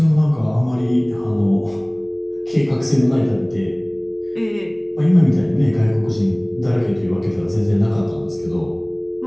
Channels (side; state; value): left; noise; hum, 29 dB below the sound